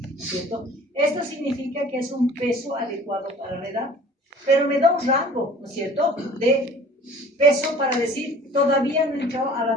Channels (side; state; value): both; normal; correlation 0.48